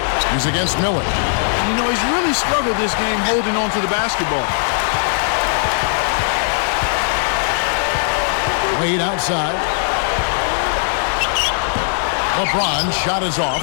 He's against Miller. You know, he's really struggled this game holding on to the basketball. Wade outside. LeBron's shot is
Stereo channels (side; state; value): right; silent; 67 dB below the other